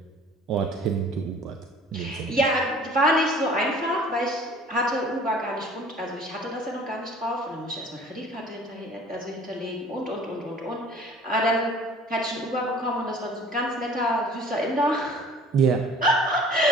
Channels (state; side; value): normal; both; correlation 0.49